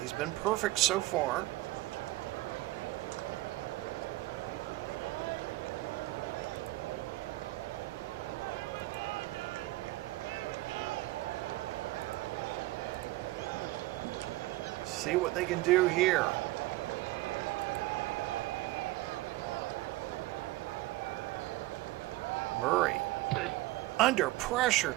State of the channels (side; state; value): left; quieter; 18.8 dB